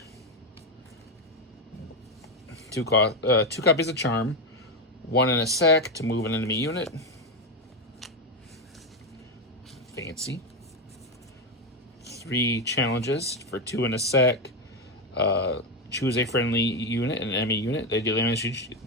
2 copies of Charm. 1 and a sack to move an enemy unit. Fancy. 3 challenges for 2 and a sack. Choose a friendly unit and an enemy unit. They deal damage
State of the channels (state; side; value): normal; both; correlation 0.10